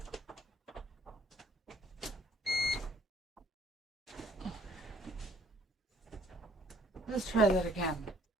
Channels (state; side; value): normal; both; correlation 0.61